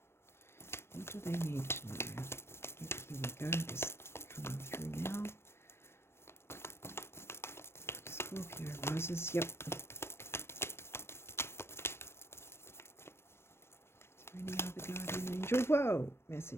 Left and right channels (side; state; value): right; late; 0.12 ms